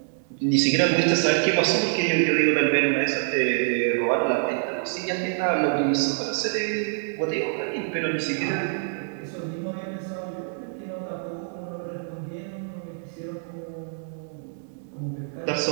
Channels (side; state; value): left; silent; digital silence